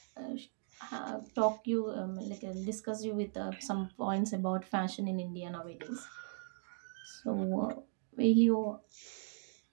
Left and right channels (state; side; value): silent; left; digital silence